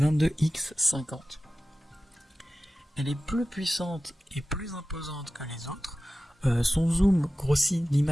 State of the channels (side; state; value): both; normal; correlation 0.95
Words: Elle est plus puissante et plus imposante que les autres. Son zoom grossit